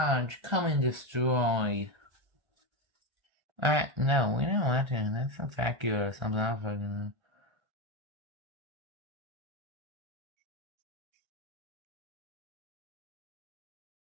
come and destroy. No, we don't want to. That's a vacuum or something else.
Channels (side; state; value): left; late; 1.3 ms